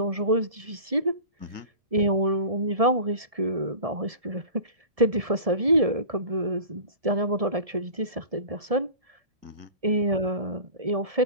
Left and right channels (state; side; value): late; left; 1.7 ms